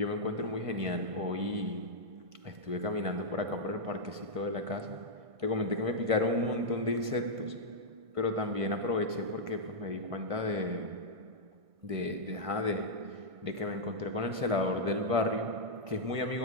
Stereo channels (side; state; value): left; late; 1.6 ms